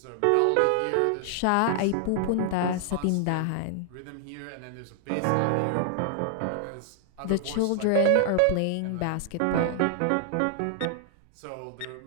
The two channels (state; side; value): different; both; correlation 0.00